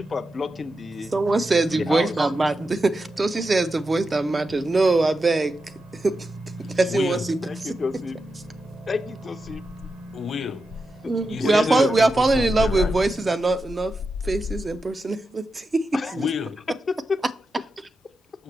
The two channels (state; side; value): normal; both; correlation 0.89